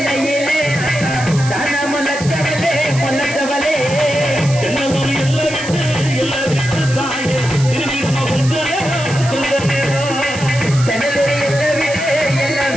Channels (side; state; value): right; noise; hiss, 12 dB below the sound